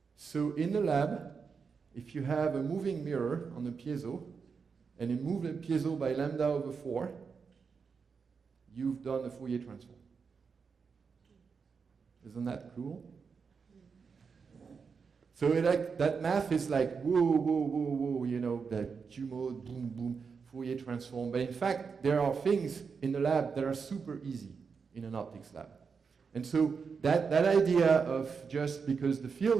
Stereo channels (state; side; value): quieter; left; 5.6 dB